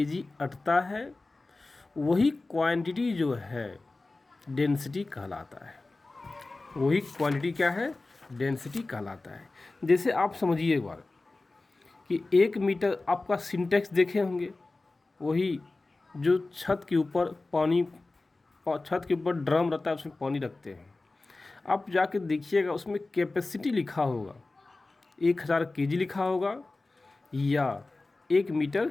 अटता है, वही क्वांटिटी जो है डेंसिटी कहलाता है। वही क्वांटिटी क्या है, डेंसिटी कहलाता है। जैसे आप समझिए एक बार कि 1 मीटर आपका सिंटेक्स देखे होंगे, वही जो छत के ऊपर ड्रम रहता है, उसमें पानी रखते हैं। आप जाके देखिएगा उसमें कैपेसिटी लिखा होगा, 1000 केजी लिखा होगा या 1 मीटर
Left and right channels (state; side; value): quieter; right; 3.3 dB